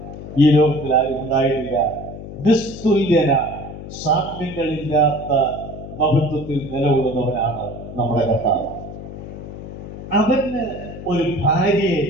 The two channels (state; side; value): noise; left; hum, 11 dB below the sound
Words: ഈ ലോകത്തിൽ ആരും ഉണ്ടായിട്ടില്ല. നിസ്തുല്യന, സാമ്യങ്ങളില്ലാത്ത മഹത്വത്തിൽ നിലകൊള്ളുന്നവനാണ് നമ്മുടെ കർത്താവ്. അവന് ഒരു ഭാര്യയെ